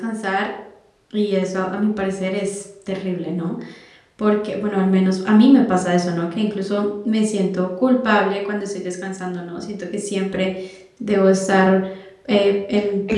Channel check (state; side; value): identical; both; correlation 1.00